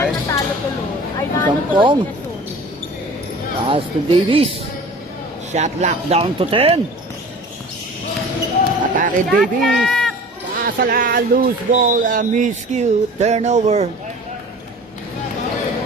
natalo tuloy. Ay, Kampong. tuloy na Pass to Davis. Shot lock down to 10. Atake Davis. Pasala, loose ball, miscue, turnover.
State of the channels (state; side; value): normal; both; correlation 0.42